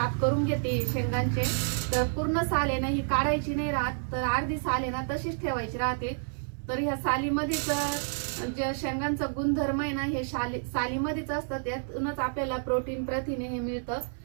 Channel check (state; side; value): silent; left; 58 dB below the other